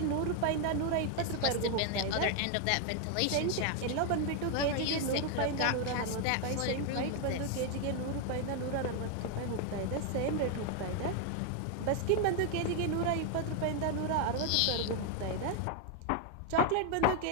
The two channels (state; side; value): different; both; correlation 0.00